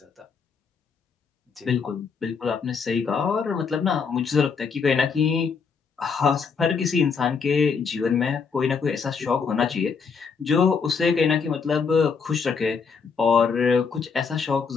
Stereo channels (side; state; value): right; quieter; 5.7 dB